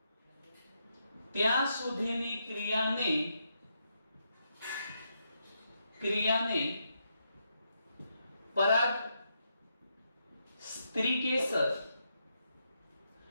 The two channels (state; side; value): inverted; both; correlation -0.81